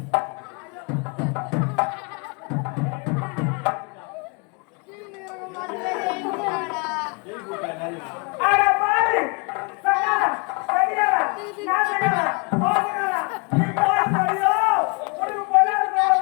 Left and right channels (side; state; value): right; quieter; 32.7 dB